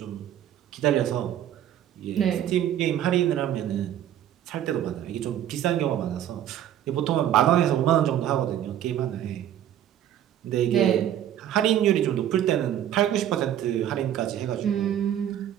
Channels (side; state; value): left; quieter; 11.0 dB